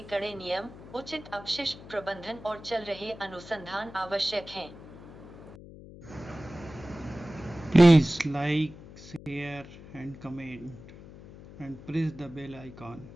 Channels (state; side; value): noise; left; hum, 17 dB below the sound